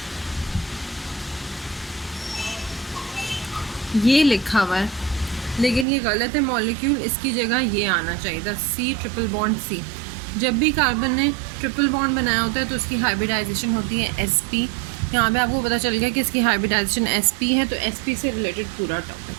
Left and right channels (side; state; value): left; drops out; at 5.9 s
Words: ये लिखा हुआ है लेकिन ये गलत है मॉलिक्यूल, इसकी जगह ये आना चाहिए था C ट्रिपल बॉन्ड C। जब भी कार्बन ने ट्रिपल बॉन्ड बनाया होता है तो उसकी हाइब्रिडाइजेशन होती है sp। यहाँ पे आपको पता चल गया कि इसकी हाइब्रिडाइजेशन sp है, तो sp से रिलेटेड पूरा टॉपिक।